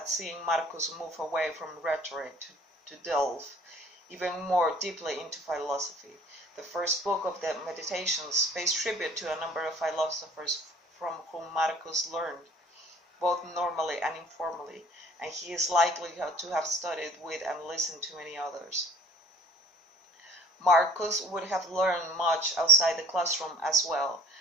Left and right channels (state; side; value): normal; both; correlation 0.52